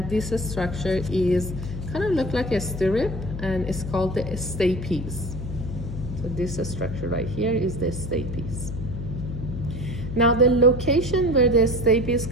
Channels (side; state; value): left; noise; hum, 7 dB below the sound